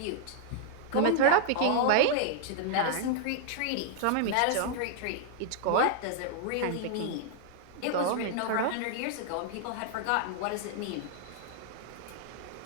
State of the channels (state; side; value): different; both; correlation -0.01